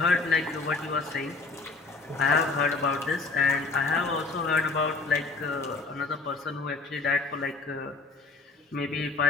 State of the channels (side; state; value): right; quieter; 3.9 dB